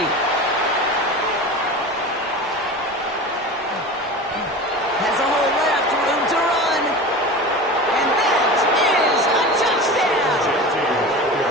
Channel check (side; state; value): both; normal; correlation 0.32